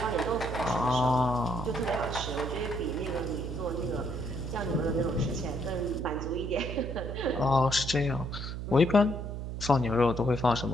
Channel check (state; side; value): noise; right; hum, 6 dB below the sound